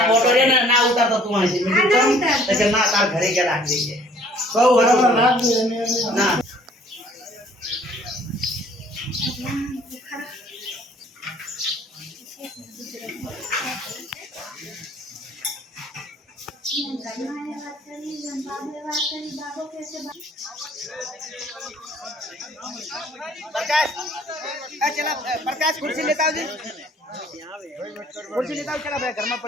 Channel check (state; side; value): normal; both; correlation 0.56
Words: प्रकाश कुर्सी लेता हो जी कुर्सी लेता हो चला भाई घर में